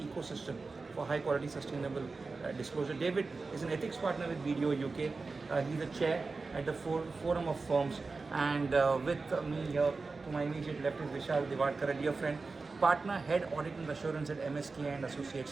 for high quality sustainable disclosure. David is an ethics partner with BDO UK. He's the chair at the Forum of Firms, and with me here to my immediate left is Vishal Divadkar, a dear friend, partner, head audit and assurance at MSK and Associates,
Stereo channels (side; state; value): left; quieter; 4.0 dB